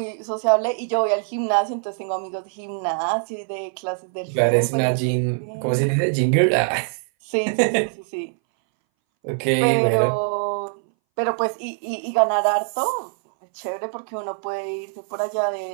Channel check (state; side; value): silent; left; 61 dB below the other